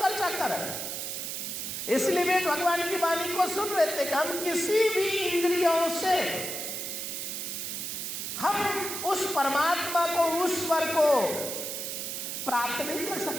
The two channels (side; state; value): right; noise; hiss, 4 dB below the sound